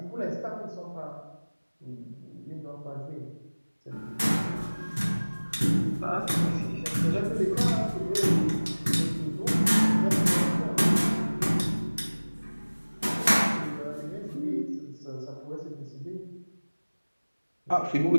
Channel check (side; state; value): both; inverted; correlation -1.00